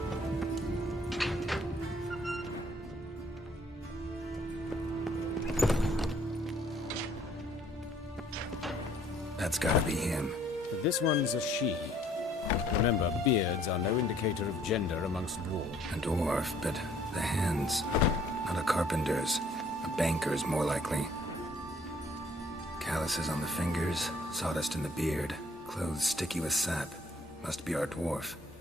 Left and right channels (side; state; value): both; normal; correlation 0.60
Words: That's gotta be him. But this one's a she. Remember, beards are no indicator of gender amongst dwarves. A dwarf, but the hands. Not a carpenter's. A banker's, more likely. Calluses on the fingers, sawdust in the beard, clothes sticky with sap. Must be our dwarf.